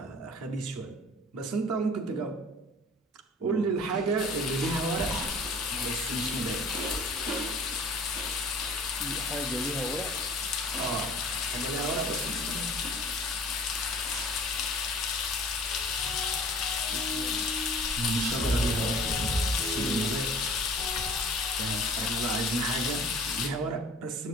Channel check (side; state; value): both; normal; correlation 0.47